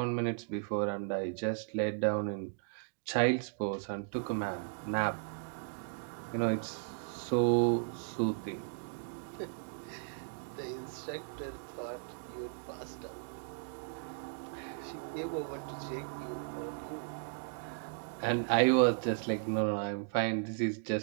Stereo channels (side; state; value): left; silent; digital silence